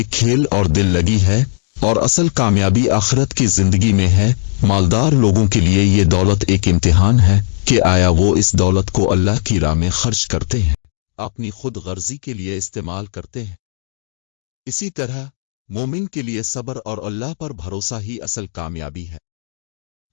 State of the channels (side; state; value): right; silent; digital silence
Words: खेल और दिल लगी है, और असल कामयाबी आखिरत की जिंदगी में है। मालदार लोगों के लिए ये दौलत एक इम्तिहान है कि आया वो इस दौलत को अल्लाह की राह में खर्च करते हैं, अपनी खुद गर्जी के लिए इस्तेमाल करते हैं। इसी तरह मोमिन के लिए सब्र और अल्लाह पर भरोसा ही असल कामयाबी है।